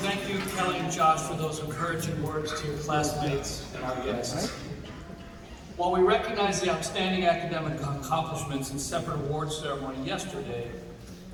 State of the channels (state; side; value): identical; both; correlation 1.00